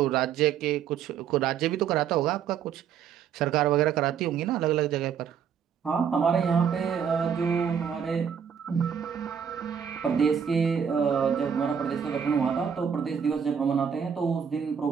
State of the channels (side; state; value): left; quieter; 7.7 dB